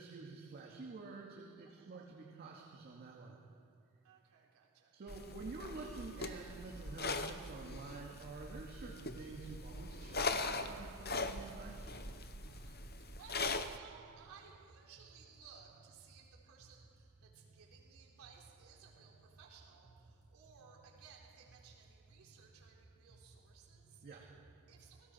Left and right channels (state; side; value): normal; both; correlation -0.01